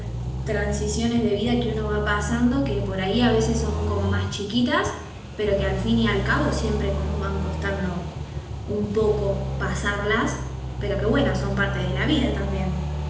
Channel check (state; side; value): identical; both; correlation 1.00